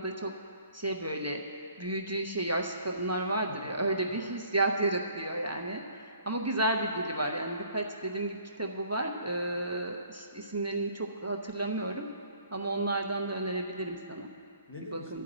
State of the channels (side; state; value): both; inverted; correlation -0.56